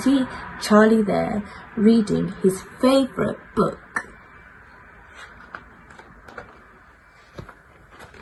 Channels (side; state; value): both; identical; correlation 1.00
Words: Charlie there reading his favourite book.